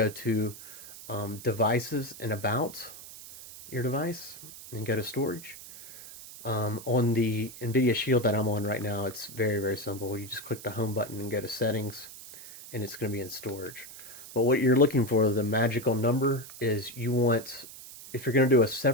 to devices and about your device and go to storage. On the NVIDIA Shield that I'm on right now, it's very, very simple. You just click the home button and go to settings, and it's going to be in storage. But what you're looking for, the magical number, is you want, if you're going to do a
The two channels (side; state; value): right; noise; hiss, 15 dB below the sound